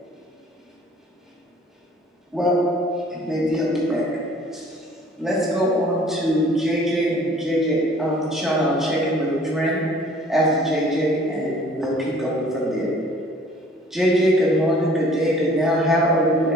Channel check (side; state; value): both; normal; correlation 0.54